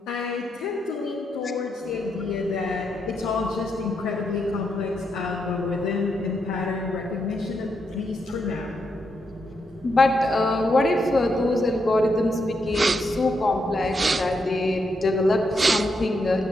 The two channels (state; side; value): normal; both; correlation 0.81